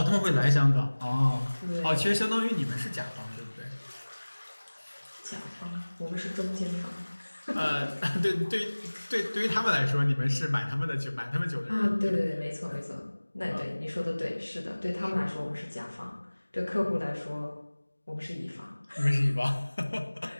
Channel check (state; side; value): inverted; both; correlation -1.00